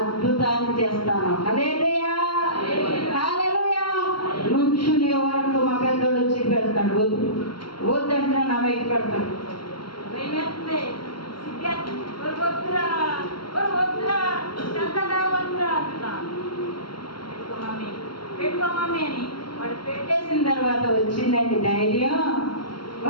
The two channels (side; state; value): right; late; 0.73 ms